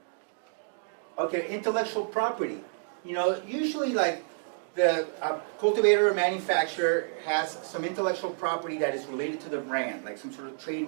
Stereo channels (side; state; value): left; silent; digital silence